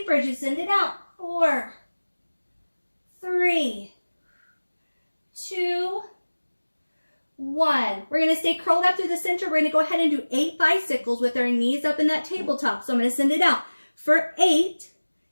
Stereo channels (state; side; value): inverted; both; correlation -1.00